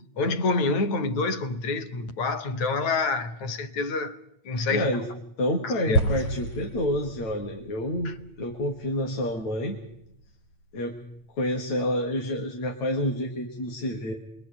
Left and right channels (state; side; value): late; right; 8.8 ms